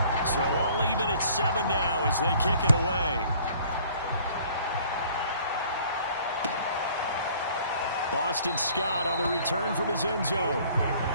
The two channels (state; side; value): inverted; both; correlation -0.55